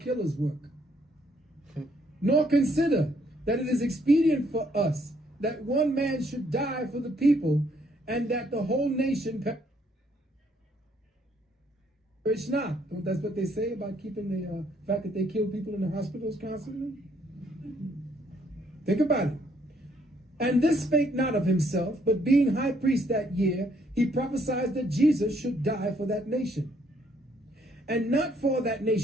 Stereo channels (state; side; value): normal; both; correlation 0.68